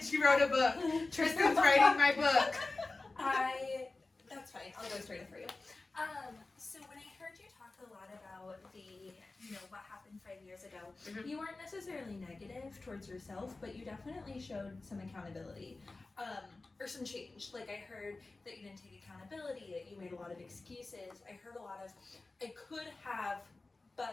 She wrote a book. Tristan's writing my book. That's fine. I'll go straight for you. So when I heard you talk a lot about what happened 5 years ago, Mhm. You weren't necessarily negative towards yourself, but you definitely showed some accountability, or some change. Like I heard that you didn't take accountability, that you made a lot of excuses. I heard a lot of, I could have, but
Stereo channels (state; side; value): quieter; right; 3.4 dB